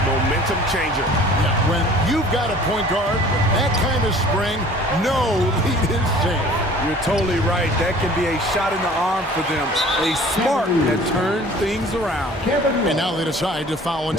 momentum changer. Yeah, when you've got a point guard with that kind of spring, no lead is safe. You're totally right. That can be a shot in the arm for them. A spark that turned things around. And now they decide to foul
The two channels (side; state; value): both; normal; correlation 0.48